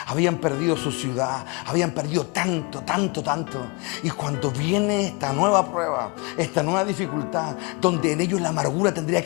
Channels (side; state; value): right; quieter; 28.9 dB